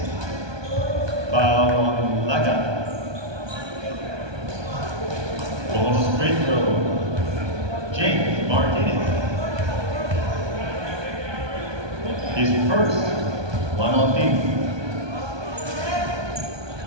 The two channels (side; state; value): left; late; 1.2 ms